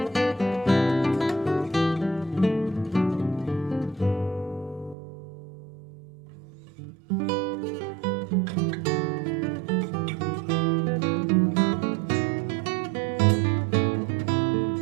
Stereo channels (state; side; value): drops out; left; at 5.0 s